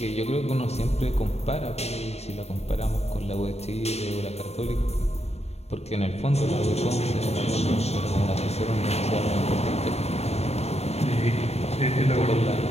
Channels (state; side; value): late; right; 0.31 ms